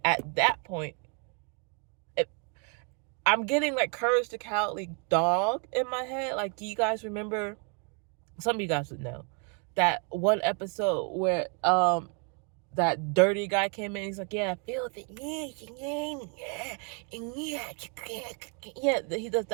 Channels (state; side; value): quieter; left; 38.3 dB